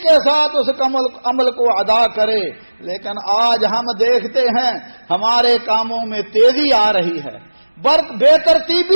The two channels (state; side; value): inverted; both; correlation -1.00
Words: ساتھ اس عمل کو ادا کرے۔ لیکن آج ہم دیکھتے ہیں ہمارے کاموں میں تیزی آ رہی ہے، بے